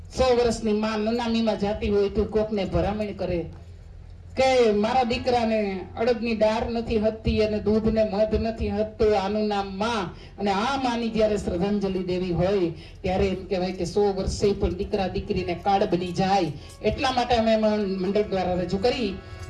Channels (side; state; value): both; identical; correlation 1.00